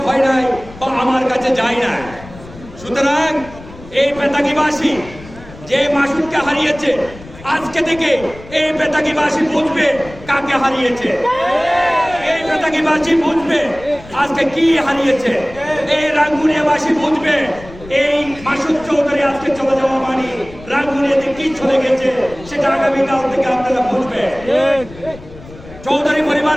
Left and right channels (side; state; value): left; noise; rumble, 18 dB below the sound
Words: হয় নাই বা আমার কাছে যায় না। সুতরাং এই বেতাগীবাসী যে মাসুদকে হারিয়েছে, আজকে থেকে এই বেতাগীবাসী বুঝবে কাকে হারিয়েছে। এই বেতাগীবাসী বুঝবে আজকে কি হারিয়েছে। এই রাঙ্গুনিয়াবাসী বুঝবে এই মাসুদ চৌধুরী আজকে চলে যাওয়া মানে রাঙ্গুনিয়াতে কি চলে গেছে সেটা আগামীকাল থেকে আপনারা বুঝবে। চৌধুরী